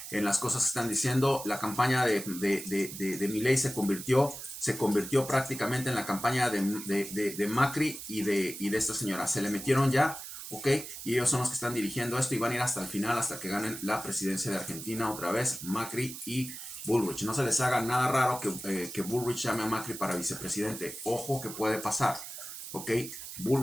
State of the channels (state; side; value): noise; right; hiss, 10 dB below the sound